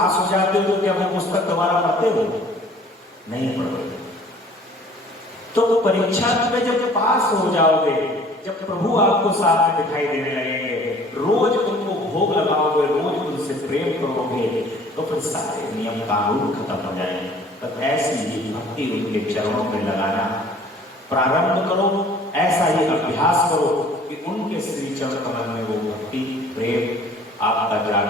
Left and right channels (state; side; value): normal; both; correlation 0.52